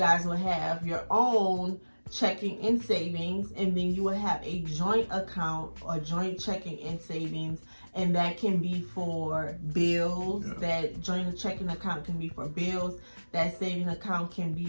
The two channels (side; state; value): both; inverted; correlation -1.00